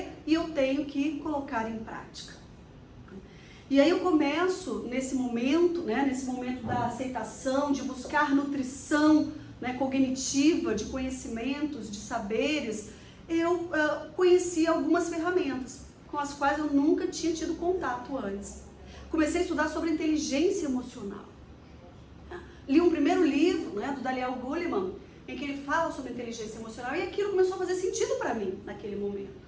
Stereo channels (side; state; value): both; identical; correlation 1.00